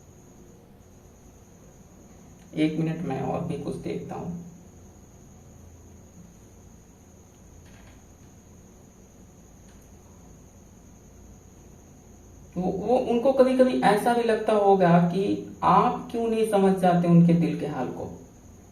एक मिनट, मैं और भी कुछ देखता हूं। वो उनको कभी कभी ऐसा भी लगता होगा कि आप क्यों नहीं समझ जाते उनके दिल के हाल को।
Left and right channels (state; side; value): identical; both; correlation 1.00